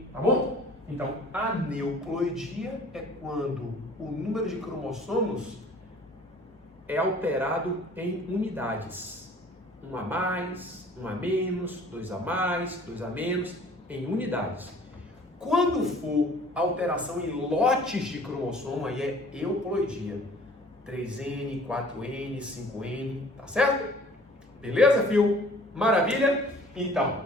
tá bom? Então, a aneuploidia é quando o número de cromossomos é alterado em unidades. 1 a mais, 1 a menos, 2 a mais, 2 a menos, em unidades. Quando for alteração em lotes de cromossomo, aí é euploidia. 3N, 4N, 5N, tá certo? Beleza, fio? Maravilha? Então,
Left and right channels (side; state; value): both; normal; correlation 0.51